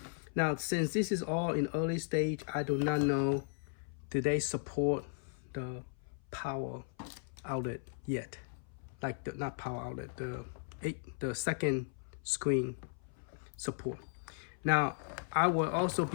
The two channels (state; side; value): silent; right; 54 dB below the other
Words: Now, since this is all in early stage, I do not know, do they support the power outlet yet? Like not power outlet, the second screen support. Now, I will also